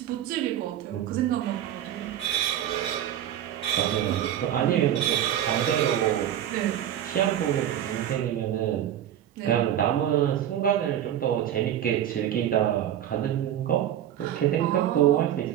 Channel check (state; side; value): quieter; left; 11.0 dB